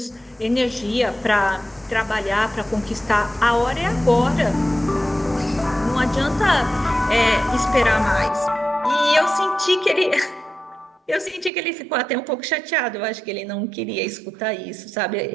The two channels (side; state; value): left; drops out; at 11.5 s